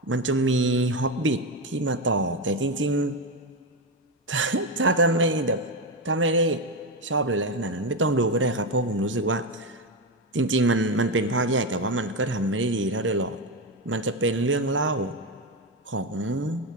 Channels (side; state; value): both; normal; correlation 0.12